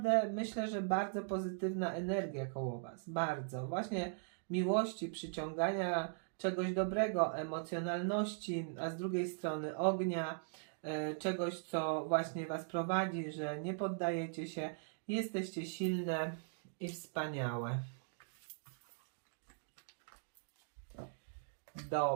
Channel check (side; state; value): left; silent; digital silence